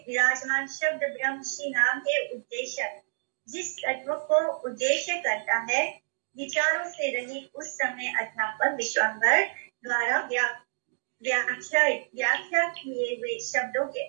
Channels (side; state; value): left; silent; digital silence